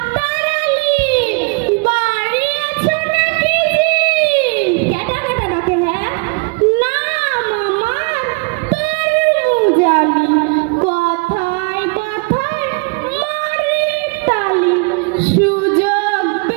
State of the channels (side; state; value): left; quieter; 31.6 dB